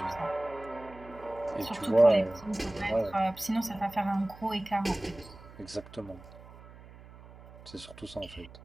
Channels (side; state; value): right; noise; hum, 19 dB below the sound